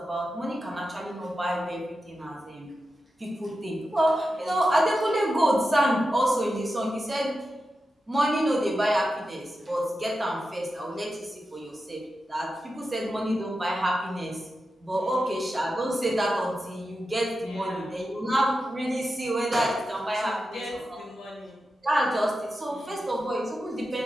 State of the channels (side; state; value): both; normal; correlation 0.90